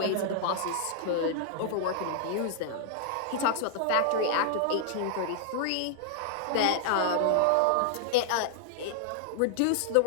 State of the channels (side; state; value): both; different; correlation -0.01